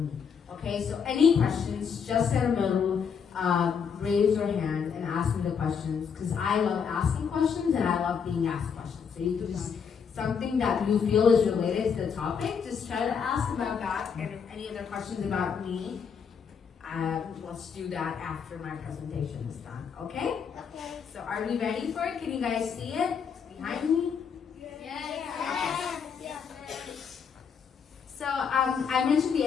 me. Okay, so any questions, just in the middle, raise your hand and ask me the questions, because I love asking questions and I love being asked questions. So you can just, something that you feel is related to the topic, just try to ask about that, and if any other questions about me, let's do that after my presentation is done, okay? Okay. So are we ready for it? Can you guys see it behind me? Yes. So I mentioned the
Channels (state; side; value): quieter; right; 6.7 dB